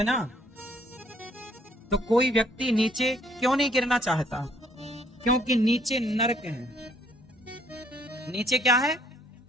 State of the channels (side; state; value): both; normal; correlation 0.63